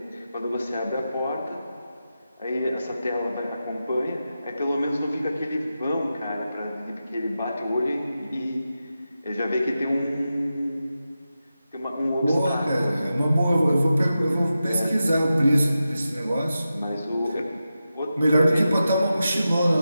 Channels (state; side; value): inverted; both; correlation -0.91